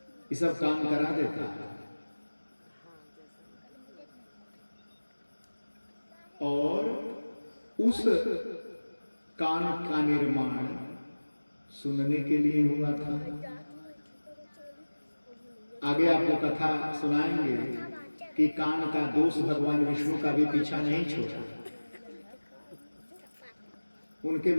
ये सब काम करा देता है। और उस कान का निर्माण सुनने के लिए हुआ था। आगे आपको कथा सुनाएंगे कि कान का दोष भगवान विष्णु का भी पीछा नहीं छोड़ा। उनके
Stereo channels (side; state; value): both; inverted; correlation -1.00